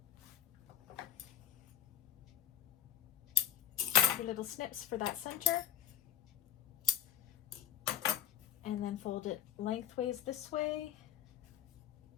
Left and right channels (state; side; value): quieter; right; 11.9 dB